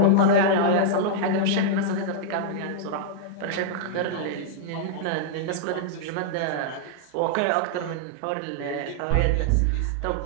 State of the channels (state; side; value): different; both; correlation -0.02